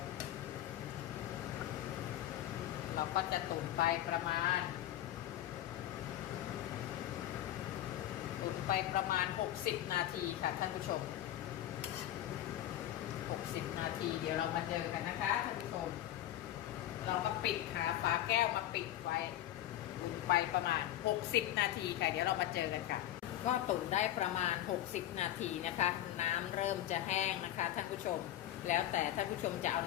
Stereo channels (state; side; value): quieter; right; 12.9 dB